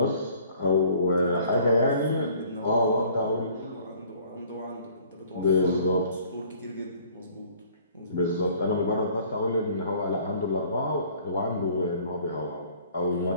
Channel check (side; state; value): both; inverted; correlation -0.55